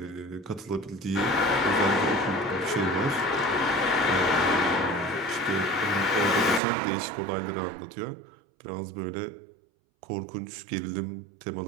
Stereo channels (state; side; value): drops out; left; at 6.6 s